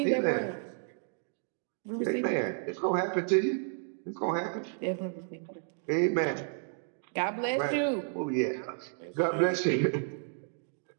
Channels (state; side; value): silent; left; digital silence